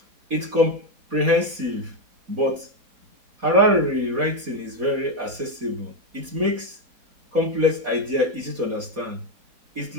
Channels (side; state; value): left; late; 4.2 ms